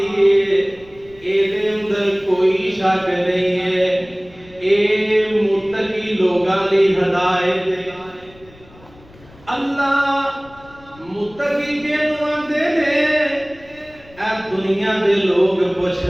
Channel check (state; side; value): noise; left; rumble, 25 dB below the sound